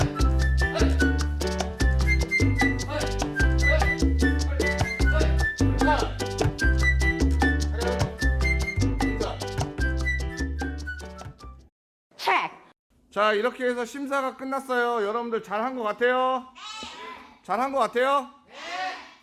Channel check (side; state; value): both; identical; correlation 1.00